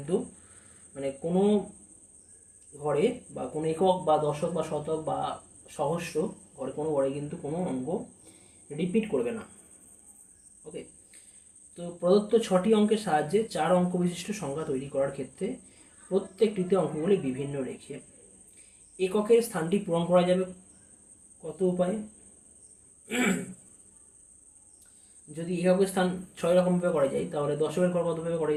মানে কোনো ঘরে বা কোনো একক বা দশক বা শতক বা সহস্র ঘরে, কোনো ঘরে কিন্তু কোনো অঙ্ক রিপিট করবে না। ওকে, তো প্রদত্ত 6টি অঙ্কের সাহায্যে 4 অঙ্ক বিশিষ্ট সংখ্যা তৈরি করার ক্ষেত্রে প্রত্যেকটিতে অঙ্কগুলি বিভিন্ন রেখে এককের স্থানটি পূরণ করা যাবে কত উপায়ে? যদি এককের স্থান 6 রকমভাবে করা যায়, তাহলে দশকের ঘর কতভাবে করা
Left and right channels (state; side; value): identical; both; correlation 1.00